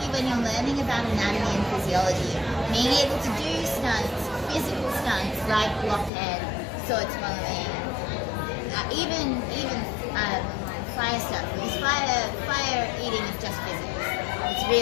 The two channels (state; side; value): drops out; right; at 6.1 s